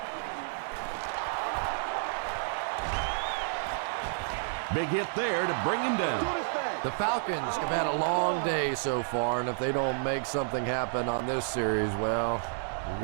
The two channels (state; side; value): silent; left; digital silence